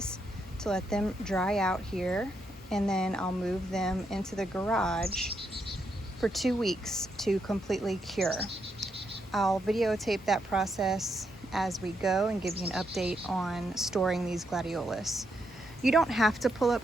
to let them dry out here, and then I'll move them into the garage for 2 weeks to completely cure. I'll videotape that process as we go and give you an update on storing these Gladiolus. You don't have to pull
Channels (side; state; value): both; normal; correlation 0.79